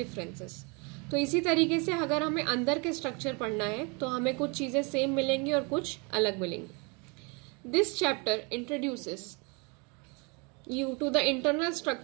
differences। तो इसी तरीके से अगर हमें अंदर के स्ट्रक्चर पढ़ना है तो हमें कुछ चीज़ें सेम मिलेंगी और कुछ अलग मिलेंगी। This chapter introduces you to the internal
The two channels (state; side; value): quieter; left; 31.4 dB